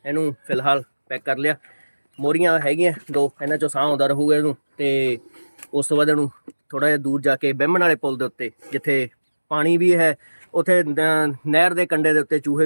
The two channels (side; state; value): both; inverted; correlation -1.00